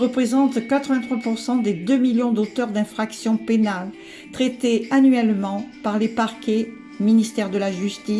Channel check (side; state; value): both; identical; correlation 1.00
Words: 83% des 2 millions d'auteurs d'infractions pénales traités annuellement par les parquets, ministère de la